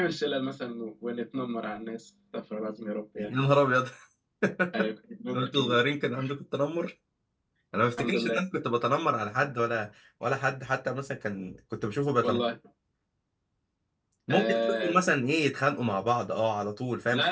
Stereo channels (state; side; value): identical; both; correlation 1.00